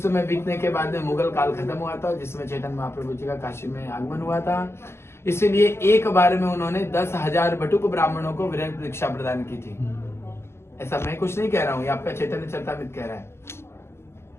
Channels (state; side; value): late; right; 0.12 ms